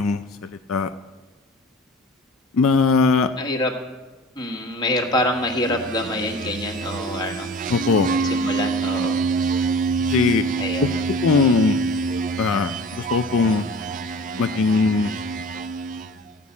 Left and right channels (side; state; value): both; normal; correlation 0.40